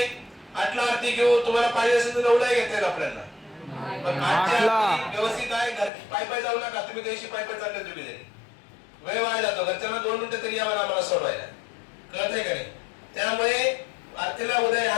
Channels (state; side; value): drops out; right; at 5.9 s